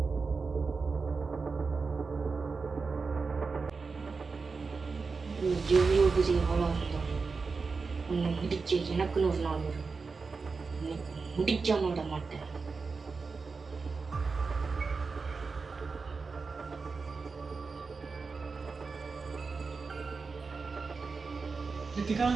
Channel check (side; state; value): left; quieter; 4.6 dB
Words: எவ்வளோ பெரிய ஆளாக இருந்தாலும் உன்னை முடிக்க எனக்குன்னு ஒரு நாள் வரும். உனக்கு முடிக்காம விட மாட்டேன். ரித்திகா,